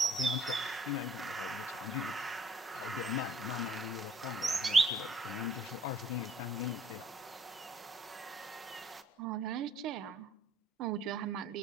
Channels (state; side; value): normal; both; correlation 0.60